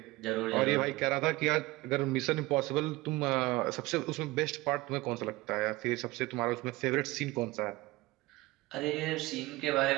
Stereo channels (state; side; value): quieter; left; 20.6 dB